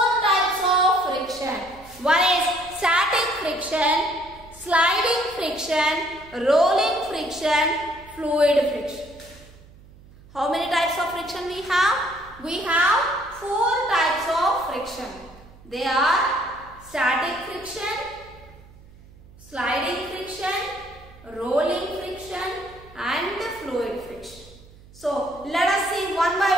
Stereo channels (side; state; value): right; noise; hum, 23 dB below the sound